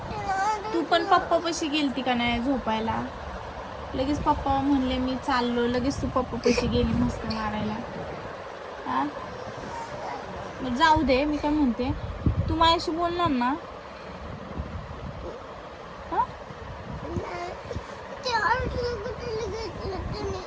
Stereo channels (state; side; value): identical; both; correlation 1.00